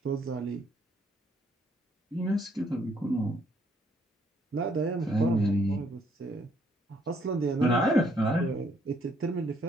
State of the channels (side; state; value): both; normal; correlation 0.69